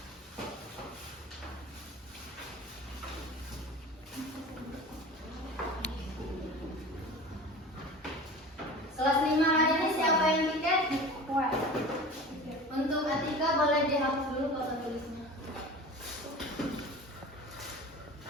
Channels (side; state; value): both; normal; correlation 0.37